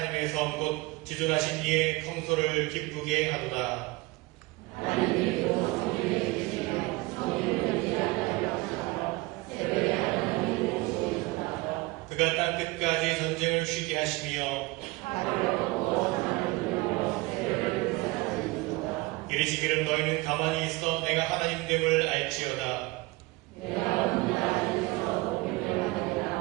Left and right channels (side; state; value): left; quieter; 22.1 dB